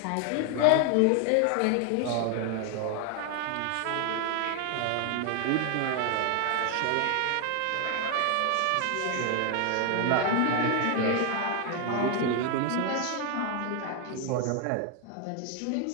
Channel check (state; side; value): different; both; correlation 0.00